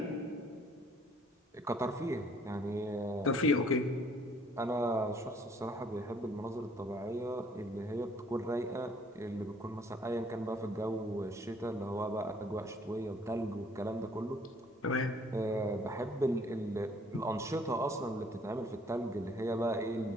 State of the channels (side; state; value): both; normal; correlation 0.60